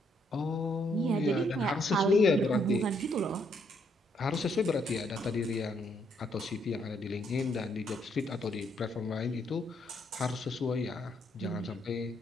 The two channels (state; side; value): normal; both; correlation 0.72